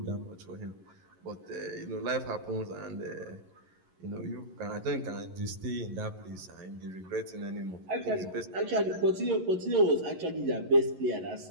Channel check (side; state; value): left; late; 11 ms